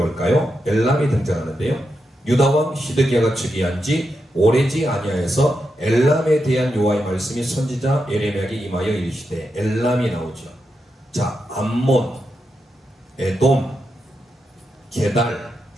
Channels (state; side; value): normal; both; correlation 0.86